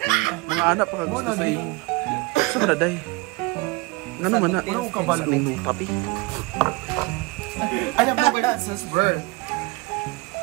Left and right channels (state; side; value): quieter; left; 23.7 dB